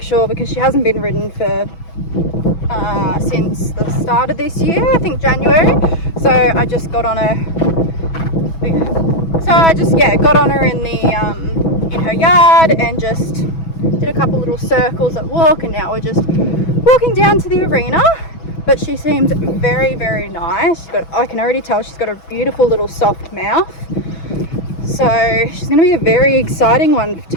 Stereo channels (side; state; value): right; late; 6.1 ms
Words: sure, because she hasn't been ridden for since the start of this year, I think January. So I just got on her. Got on her in the in her yard and just did a couple little circles at walk, and now we're just walking down to the arena. But she seems very, very nice. I can already tell she's got a beautiful little soft mouth. So she's going to be a very exciting one